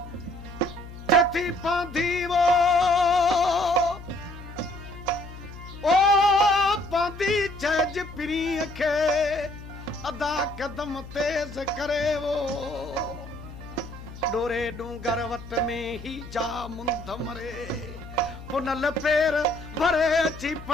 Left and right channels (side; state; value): left; noise; hum, 14 dB below the sound